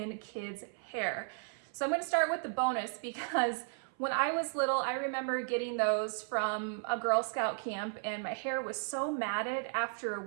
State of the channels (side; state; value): left; silent; 55 dB below the other